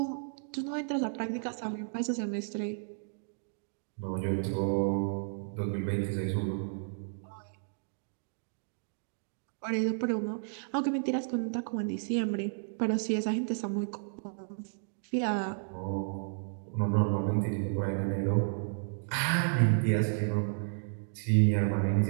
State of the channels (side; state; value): left; silent; digital silence